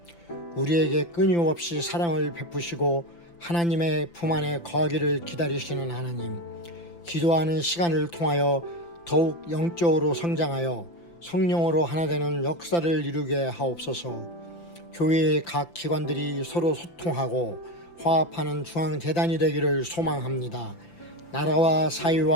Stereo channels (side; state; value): right; late; 5.9 ms